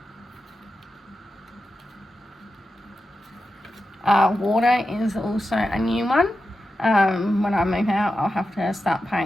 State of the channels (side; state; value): both; normal; correlation 0.90